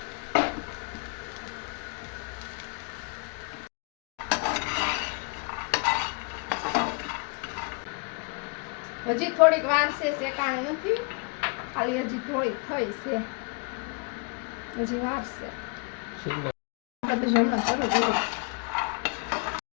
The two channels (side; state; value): right; quieter; 31.3 dB